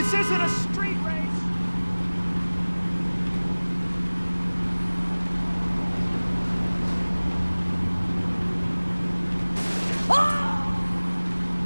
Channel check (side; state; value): both; inverted; correlation -1.00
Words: isn't a street race.